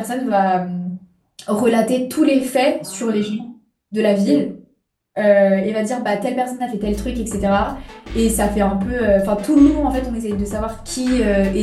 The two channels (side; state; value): both; identical; correlation 1.00